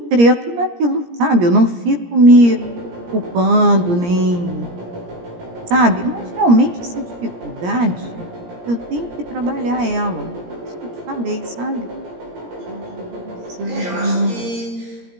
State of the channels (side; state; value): left; late; 17 ms